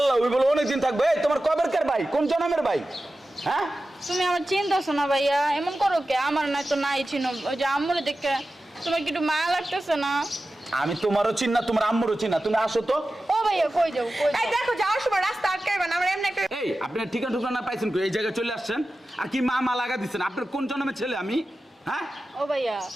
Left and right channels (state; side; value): normal; both; correlation 0.94